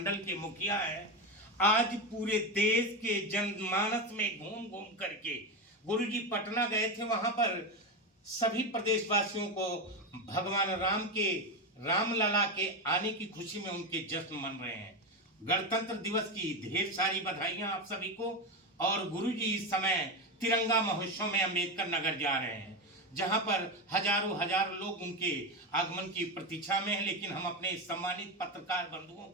के मुखिया हैं, आज पूरे देश के जनमानस में घूम घूम करके गुरुजी पटना गए थे। वहां पर सभी प्रदेशवासियों को भगवान राम के रामलला के आने की खुशी में उनके जश्न मन रहे हैं। गणतंत्र दिवस की ढेर सारी बधाइयां आप सभी को। और गुरुजी इस समय तिरंगा महोत्सव में अम्बेडकर नगर जा रहे हैं, जहां पर हजारों लोग उनके आगमन की प्रतीक्षा में हैं। लेकिन हम अपने सम्मानित पत्रकार बंधुओं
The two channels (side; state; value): both; normal; correlation 0.14